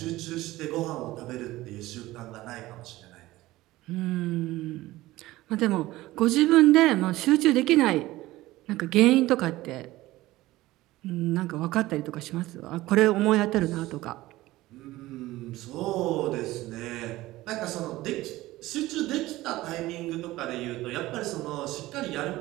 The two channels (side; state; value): left; quieter; 17.5 dB